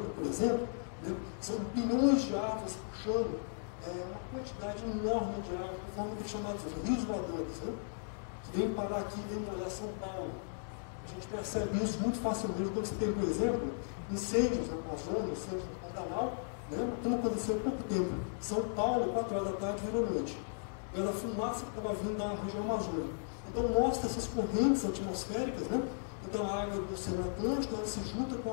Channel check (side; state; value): right; silent; digital silence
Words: por exemplo, né? São bilhões de árvores puxando uma quantidade enorme de água, de forma de chamados rios voadores, né? Que vem parar aqui, vem molhar São Paulo. A gente percebe isso muito facilmente quando você tem, por exemplo, incêndios na Amazônia, incêndios no Pantanal, né? Tudo aconteceu há pouco tempo. São Paulo, 4 horas da tarde, vira noite. Pela fumaça que estava vindo da região amazônica. Então, mostra essas correntes atmosféricas, né? Então, a água do Oceano Atlântico, ela se junta com